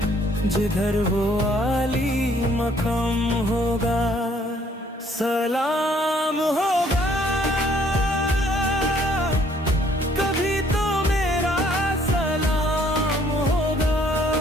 जिधर वो आली मकाम होगा। सलाम होगा कभी तो मेरा सलाम होगा,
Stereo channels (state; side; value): normal; both; correlation 0.63